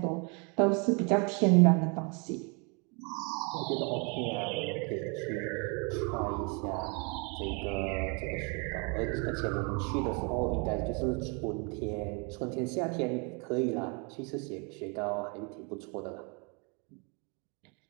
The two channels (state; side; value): quieter; left; 33.7 dB